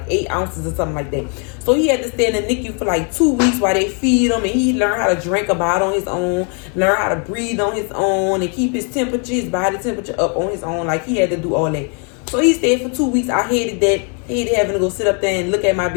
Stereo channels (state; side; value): quieter; right; 38.8 dB